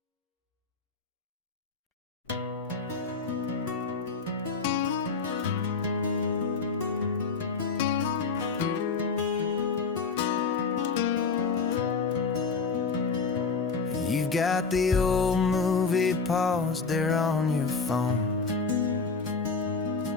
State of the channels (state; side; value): quieter; right; 4.8 dB